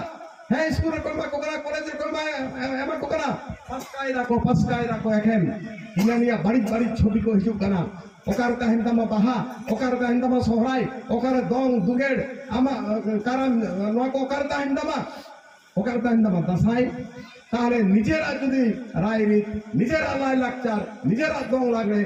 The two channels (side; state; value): both; identical; correlation 1.00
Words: হ্যাঁ স্কুলের কর্মা কোকরা কলেজের কর্মা এমা কোকরা পাঁচটায় রাখো এখন ইনানিয়া বাড়ি বাড়ি ছবি কো হিসুক কানা ওকার কাহিনতামা বাহা ওকার কাহিনতামা সহরাই ওকার দং দুগেড় আমা কারণ নোয়া কো ওকার কাহিনতামা দাসাই তাহলে নিজেরা যদি রায়রিত নিজেরা লাই লাকচার নিজেরা দং লাগলে